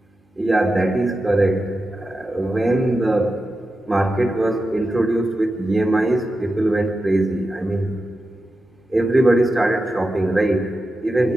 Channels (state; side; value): normal; both; correlation 0.91